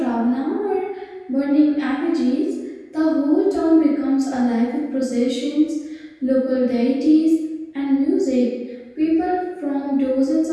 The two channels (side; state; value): both; identical; correlation 1.00